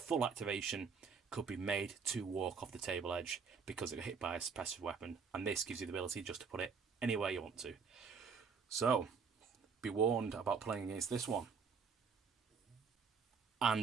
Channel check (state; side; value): quieter; left; 5.7 dB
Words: activation could be made to walk off the table edge because it got hit by a suppressive weapon, and this gives you the ability just to put it anywhere you want to. So, be warned about playing against this one.